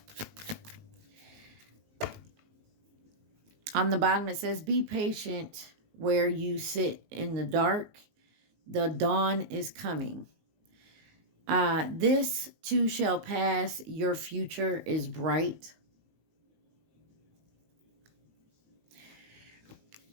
On the bottom, it says, be patient where you sit in the dark. The dawn is coming. This too shall pass. Your future is bright.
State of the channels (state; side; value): late; left; 19 ms